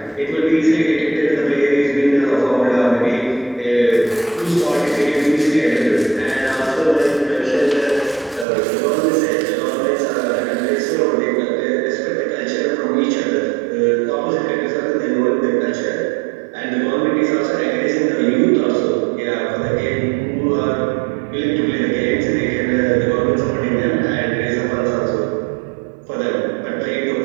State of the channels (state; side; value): drops out; left; at 8.5 s